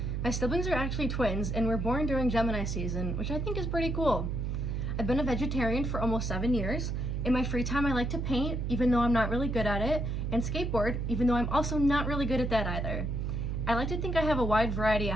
My siblings are actually twins, and were born during Gemini season, which I think is pretty cool. I've been a vegetarian for almost 7 years. In my free time, I like to paint, even though I'm not really good at it, and skateboard, even though I'm also not really good at that either. I like to think I have a wide variety of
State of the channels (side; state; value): right; noise; hum, 1 dB below the sound